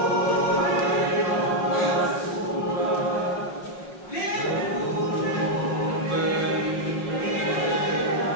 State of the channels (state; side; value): late; right; 5.6 ms